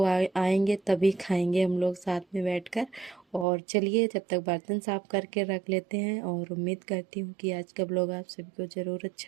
आएंगे तभी खाएंगे हम लोग साथ में बैठकर। और चलिए जब तक बर्तन साफ़ करके रख लेते हैं। और उम्मीद करती हूँ कि आज का ब्लॉग आप सभी को ज़रूर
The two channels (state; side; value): drops out; left; at 3.5 s